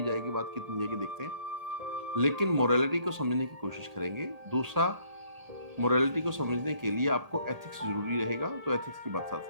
जाएगी बात, कितनी जाएगी देखते हैं। लेकिन मोरालिटी को समझने की कोशिश करेंगे। दूसरा, मोरालिटी को समझने के लिए आपको एथिक्स ज़रूरी रहेगा, तो एथिक्स की बात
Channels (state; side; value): late; left; 1.8 ms